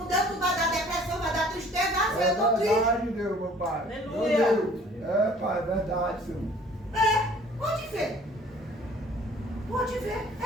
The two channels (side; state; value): both; normal; correlation 0.53